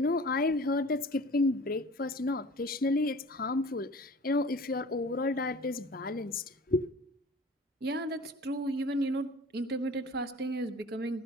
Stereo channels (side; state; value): both; normal; correlation 0.43